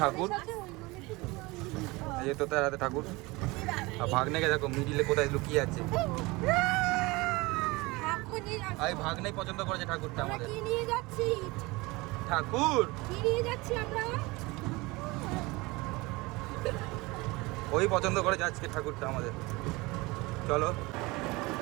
এই যে তোতার হাতে ঠাকুর। আর ভাগ্নেকে দেখো মিডিলে কোথায় লুকিয়ে আছে। এই ভাগ্নেই পছন্দ করেছে ঠাকুরটা আমাদের। কি নিয়ে যাচ্ছি? ঠাকুর কি নিয়ে যাচ্ছি আমরা? ওই পছন্দ করেছে আজকে ঠাকুরটা আমাদের। চলো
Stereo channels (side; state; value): left; quieter; 23.3 dB